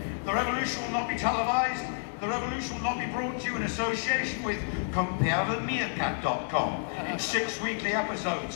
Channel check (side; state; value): right; silent; digital silence